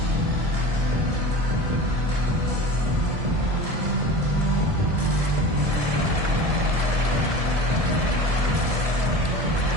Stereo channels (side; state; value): left; late; 1.7 ms